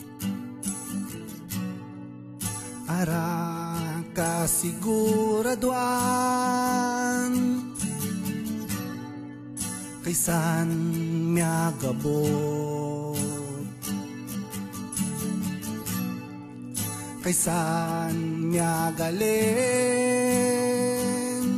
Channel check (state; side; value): identical; both; correlation 1.00